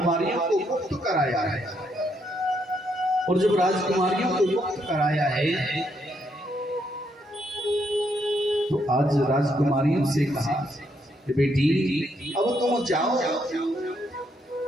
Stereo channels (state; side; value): normal; both; correlation 0.75